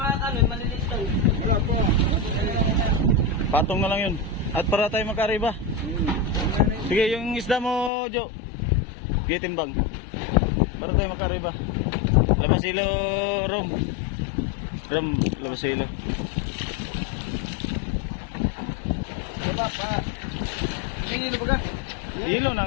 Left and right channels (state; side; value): drops out; right; at 7.9 s